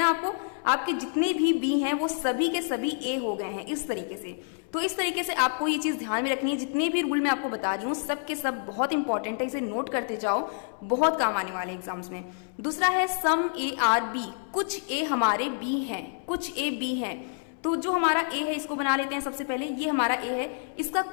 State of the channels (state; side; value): silent; right; 59 dB below the other